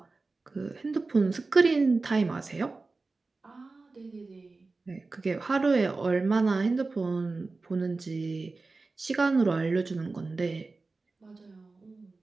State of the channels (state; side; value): quieter; left; 3.7 dB